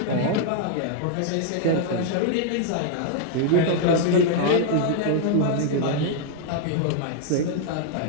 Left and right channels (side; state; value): both; different; correlation 0.00